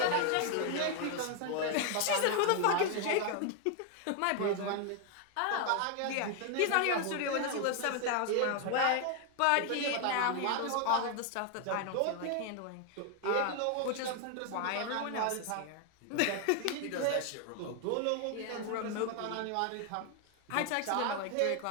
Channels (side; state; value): both; different; correlation 0.01